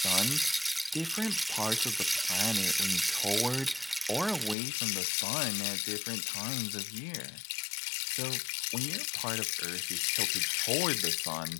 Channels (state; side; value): drops out; right; at 4.5 s